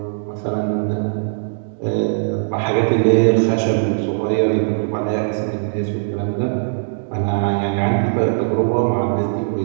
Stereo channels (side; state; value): left; silent; digital silence